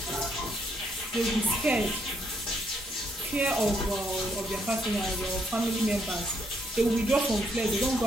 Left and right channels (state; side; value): normal; both; correlation 0.74